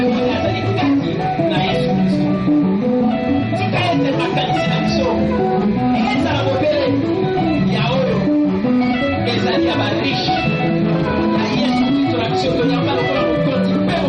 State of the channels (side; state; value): both; identical; correlation 1.00